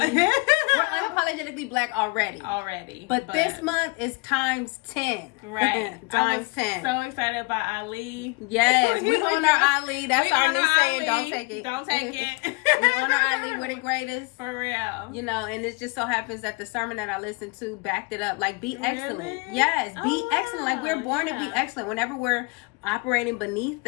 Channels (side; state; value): right; quieter; 28.4 dB